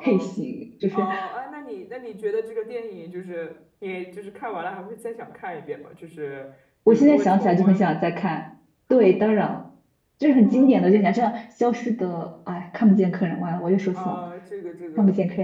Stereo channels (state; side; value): identical; both; correlation 1.00